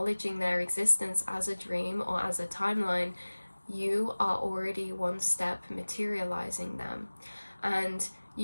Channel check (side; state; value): both; inverted; correlation -1.00